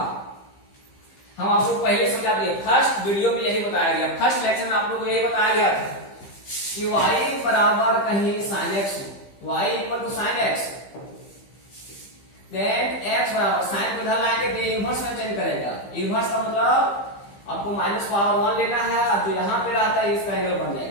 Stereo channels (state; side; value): late; right; 15 ms